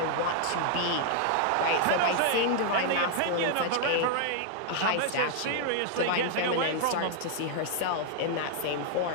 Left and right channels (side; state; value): both; different; correlation 0.00